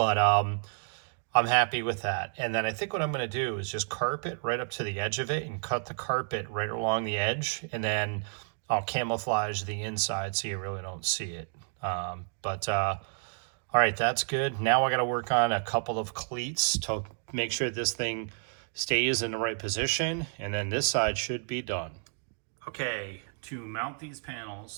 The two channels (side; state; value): left; silent; 57 dB below the other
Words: I'm happy with that. And then I think what I'm going to do is just carpet right up to the edge of it and cut the carpet right along the edge, and then I'll camouflage the inside so you really don't see it. All right, that's good. Now I got to work on a couple of cleats to make sure this thing stays in the right position, and then this side should be done. Okay, to mount these